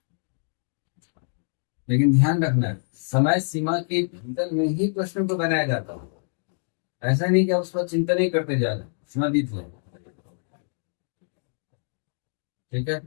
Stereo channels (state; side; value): silent; right; digital silence